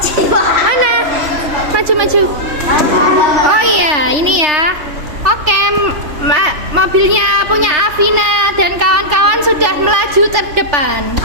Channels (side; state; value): left; late; 3.3 ms